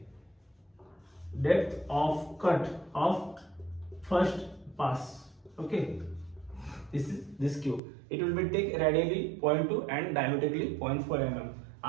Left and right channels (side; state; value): left; drops out; at 7.8 s